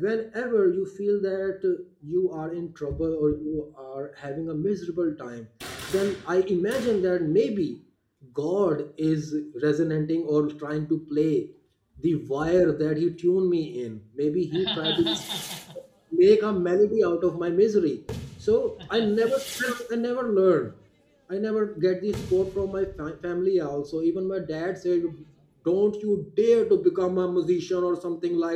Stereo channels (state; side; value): identical; both; correlation 1.00